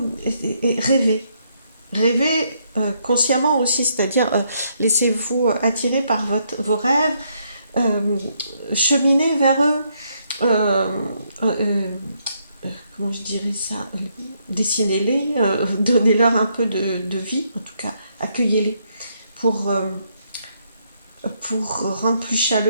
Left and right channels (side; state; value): both; inverted; correlation -0.74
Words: et rêvez. Rêvez consciemment aussi, c'est-à-dire laissez-vous attirer par vos rêves, euh, cheminez vers eux, euh, euh, comment je dirais ça, dessinez-les, donnez-leur un peu de vie, en tout cas, accueillez-les pour, euh, pour rendre plus